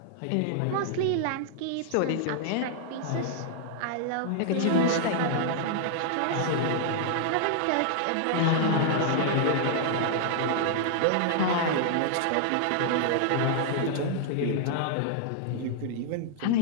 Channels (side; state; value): both; different; correlation -0.01